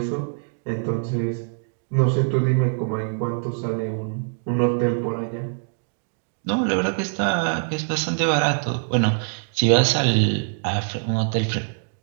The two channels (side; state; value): left; silent; 63 dB below the other